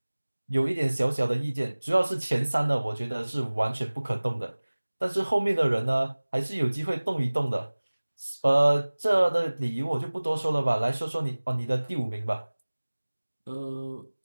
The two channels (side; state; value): both; inverted; correlation -1.00